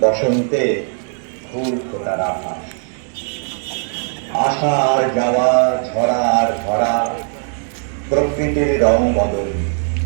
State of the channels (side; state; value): left; silent; 58 dB below the other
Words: বসন্তে ফুল ফোটার আভাস। আসা আর যাওয়া, ঝরা আর ধরা, প্রকৃতির রং বদল